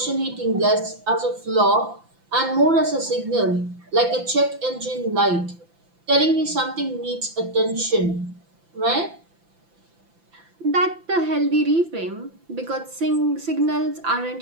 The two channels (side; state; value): left; late; 5.9 ms